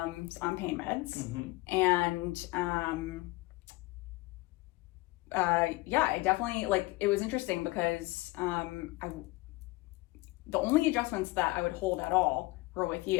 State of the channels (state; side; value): quieter; right; 21.7 dB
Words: pain meds, and I definitely, it was interesting because the only adjustments that I would hold at all were with